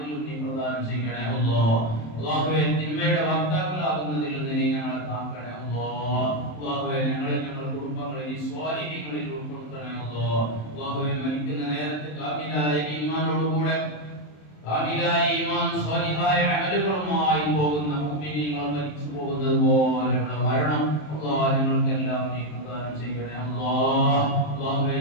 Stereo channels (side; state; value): right; late; 27 ms